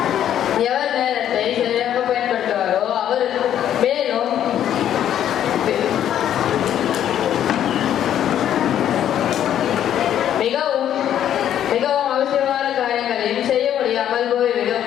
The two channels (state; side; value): quieter; right; 10.5 dB